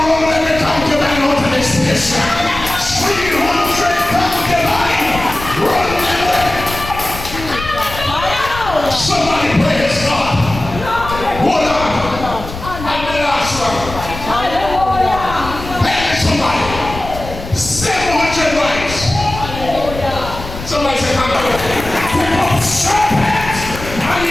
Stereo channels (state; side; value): noise; left; rumble, 10 dB below the sound